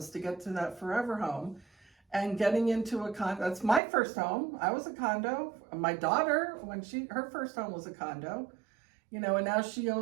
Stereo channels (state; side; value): drops out; left; at 3.8 s